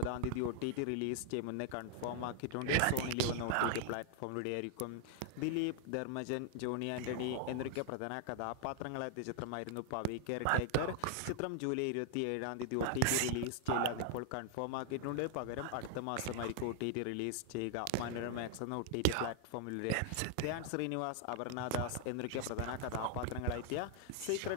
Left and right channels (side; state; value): both; different; correlation 0.00